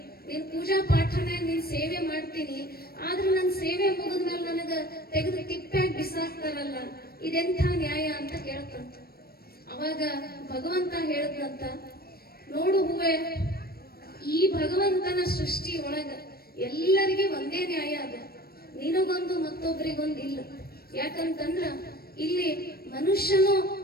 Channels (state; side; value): late; right; 0.44 ms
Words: ನಿನ್ ಪೂಜಾ ಪಾಠನ ನಿನ್ ಸೇವೆ ಮಾಡ್ತೀನಿ, ಆದ್ರೆ ನನ್ನ ಸೇವೆ ಮುಗಿದ್ಮೇಲೆ ನನಗ ತೆಗೆದು ತಿಪ್ಪ್ಯಾಗ ಬಿಸಾಕ್ತಾರಲ್ಲ, ಇದೆಂಥ ನ್ಯಾಯ ಅಂತ ಕೇಳ್ತಂತ. ಅವಾಗ ಭಗವಂತ ಹೇಳದ್ನಂತ, ನೋಡು ಹೂವೆ, ಈ ಭಗವಂತನ ಸೃಷ್ಟಿ ಒಳಗ ಎಲ್ಲರಿಗೆ ಒಂದೇ ನ್ಯಾಯ ಅದ, ನಿನಗೊಂದು ಮತ್ತೊಬ್ಬರಿಗೊಂದು ಇಲ್ಲ. ಯಾಕಂತಂದ್ರ ಇಲ್ಲಿ ಮನುಷ್ಯನು